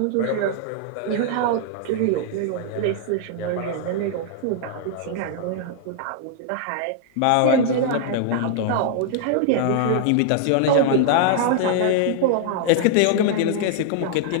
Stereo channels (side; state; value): both; different; correlation -0.01